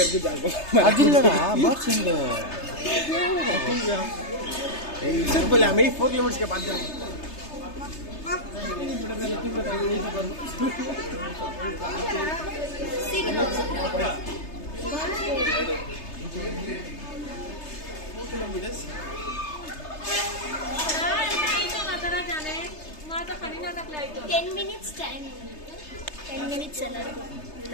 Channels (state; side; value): late; right; 3.3 ms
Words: அது இல்லடா பாக்ஸ் எங்க ஏய் சரி போல मैं 4 किलोमीटर के बाद जा Ten minutes time. 10 minutes